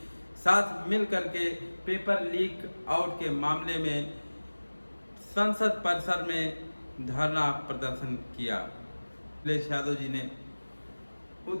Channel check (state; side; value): inverted; both; correlation -1.00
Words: साथ मिलकर के पेपर लीक आउट के मामले में संसद परिसर में धरना प्रदर्शन किया। अखिलेश यादव जी ने